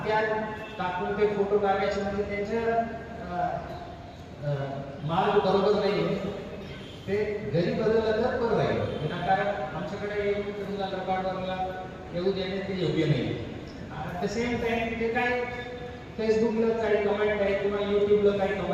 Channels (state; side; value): identical; both; correlation 1.00